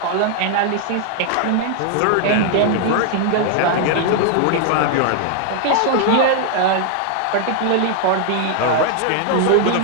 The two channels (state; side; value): different; both; correlation 0.00